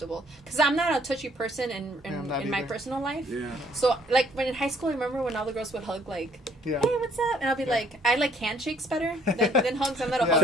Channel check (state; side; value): normal; both; correlation 0.62